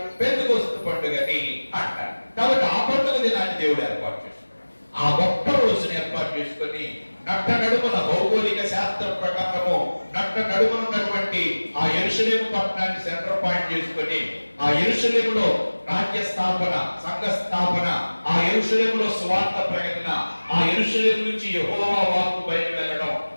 పెంతెకొస్తు పండుగని అంటారు. కాబట్టి ఆ పండుగ దినాన్ని దేవుడు ఏర్పాటు చేసుకున్నాడు. ఆ ఒక్క రోజుని ఏర్పాటు చేసుకొని నట్ట నడుమున భౌగోళిక శాస్త్రం ప్రకారము నట్ట నడుమన ఉన్నటువంటి ఆ యెరూషలేము పట్టణాన్ని సెంటర్ పాయింట్ చేసుకొని ఆ యెరూషలేములో రాజ్య స్థాపన, సంఘ స్థాపన, ఆ యెరూషలేములో సువార్త ప్రకటన, ఆ యెరూషలేము నుంచి యెహోవా వాక్కు బయట వెళ్ళడం,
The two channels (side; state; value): both; inverted; correlation -1.00